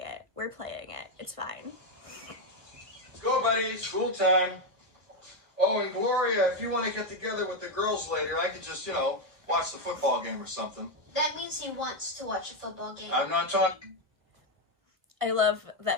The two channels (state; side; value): late; left; 1.4 ms